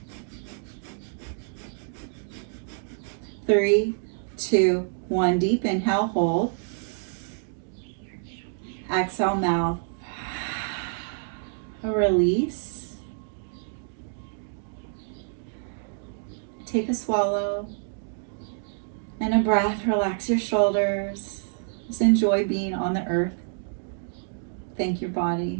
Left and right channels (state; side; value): silent; left; digital silence